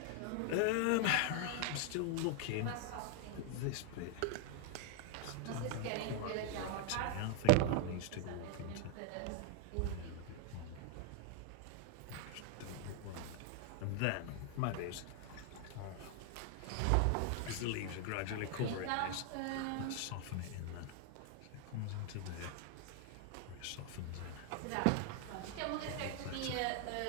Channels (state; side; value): different; both; correlation 0.00